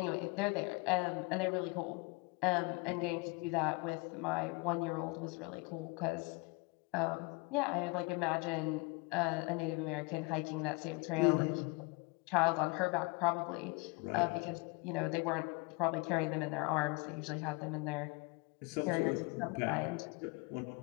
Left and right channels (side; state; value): right; quieter; 26.9 dB